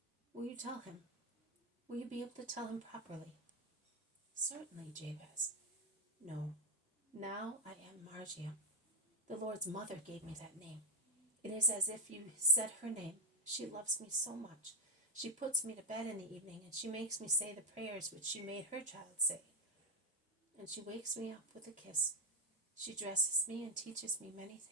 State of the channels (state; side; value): normal; both; correlation 0.01